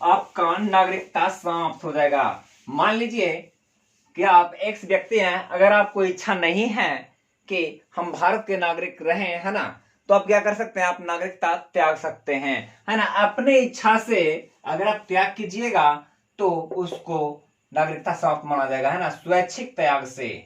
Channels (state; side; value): identical; both; correlation 1.00